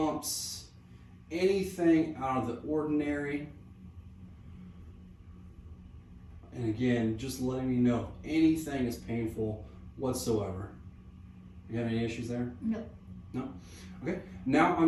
anything out of the ordinary. And again, just letting me know if anything is painful whatsoever. You have any issues there? No. No? Okay. Now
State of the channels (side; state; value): both; identical; correlation 1.00